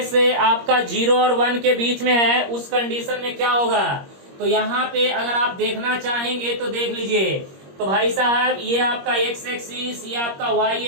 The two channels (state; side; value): late; left; 21 ms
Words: आपका 0 और 1 के बीच में है उस कंडीशन में क्या होगा। तो यहाँ पे अगर आप देखना चाहेंगे तो देख लीजिए। तो भाई साहब ये आपका एक्स एक्सिस, ये आपका वाई